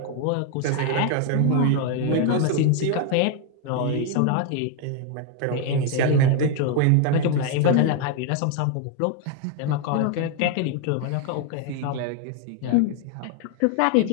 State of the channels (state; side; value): different; both; correlation 0.01